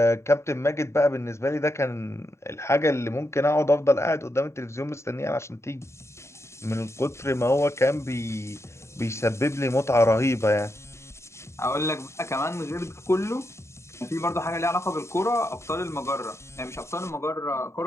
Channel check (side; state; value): right; late; 0.13 ms